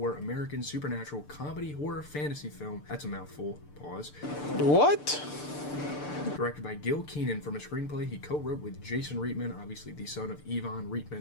American supernatural comedy horror fantasy film. That's a mouthful. Pause. What? Directed by Gil Kenan from a screenplay he co-wrote with Jason Reitman, obviously the son of Yvonne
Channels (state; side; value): late; right; 6.8 ms